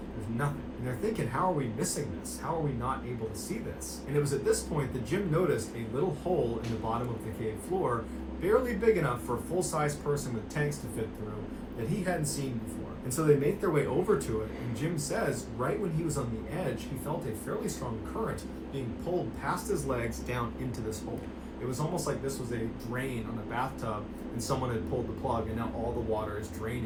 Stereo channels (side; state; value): both; identical; correlation 1.00